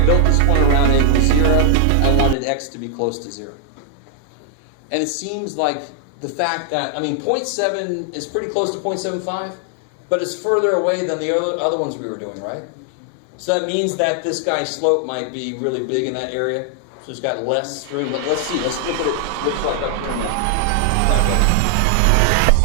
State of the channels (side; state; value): both; different; correlation 0.00